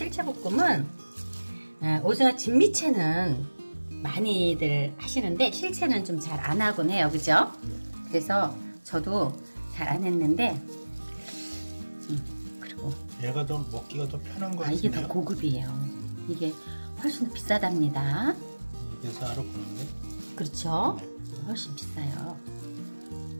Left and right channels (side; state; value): both; inverted; correlation -1.00